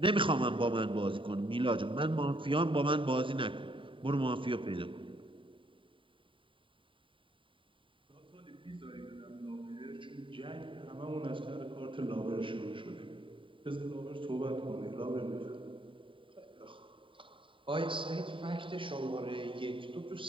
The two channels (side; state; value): left; late; 0.25 ms